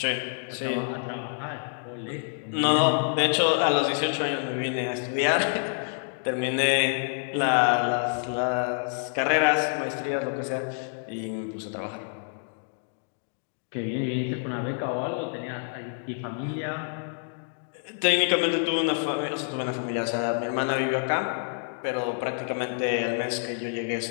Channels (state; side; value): silent; right; digital silence